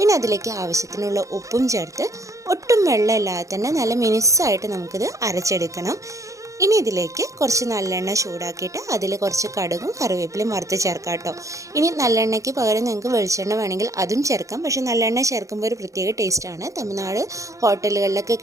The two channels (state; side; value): late; left; 0.15 ms